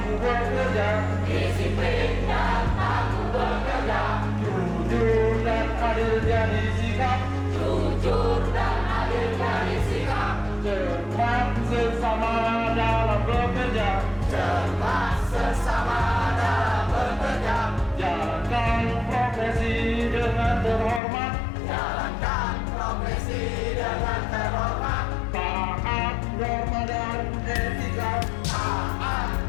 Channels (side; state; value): right; drops out; at 21.0 s